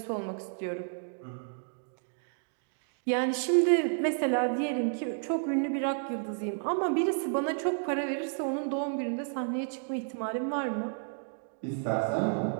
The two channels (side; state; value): left; silent; digital silence